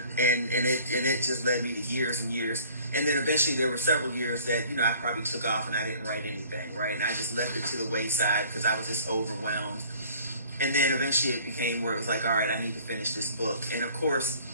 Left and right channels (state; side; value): inverted; both; correlation -0.51